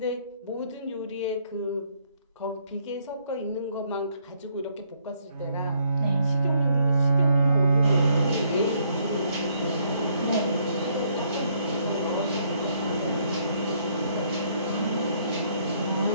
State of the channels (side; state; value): both; inverted; correlation -0.69